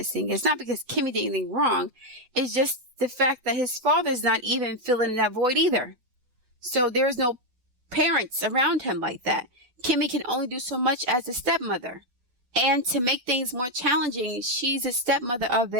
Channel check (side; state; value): left; late; 8.0 ms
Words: It's not because Kimmie did anything wrong. It's just the fact that his father's not even filling that void either. So there's no parents around him like that. Kimmie can only do so much as a stepmother. And to make things more challenging, she's a stepmother of